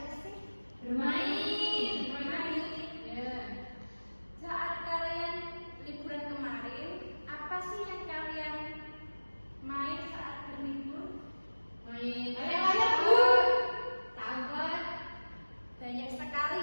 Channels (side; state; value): both; inverted; correlation -1.00